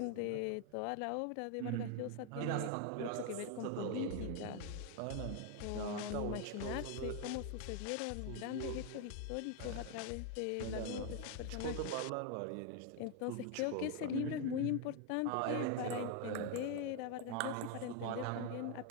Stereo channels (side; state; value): both; different; correlation 0.01